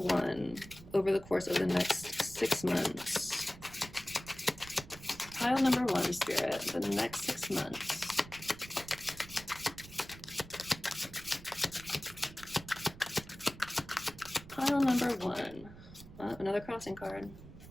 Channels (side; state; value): right; noise; rumble, 17 dB below the sound